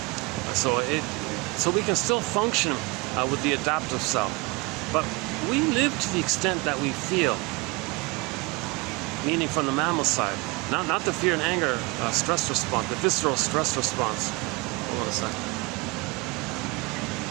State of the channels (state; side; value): quieter; left; 24.6 dB